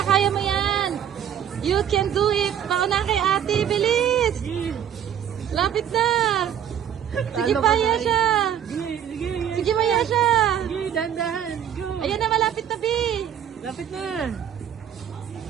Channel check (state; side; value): quieter; left; 9.4 dB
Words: kaya mo yan. You can do it. Pauna kay ate, bilis. Lapit na. Sige pa, Yesha. Sige! Sige! Sige pa, Yesha. Sige! Dahan-dahan! Go! Ayan na, malapit na, Bi. Lapit na!